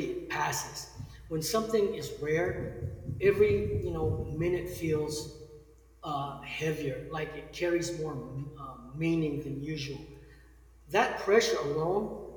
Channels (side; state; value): both; identical; correlation 1.00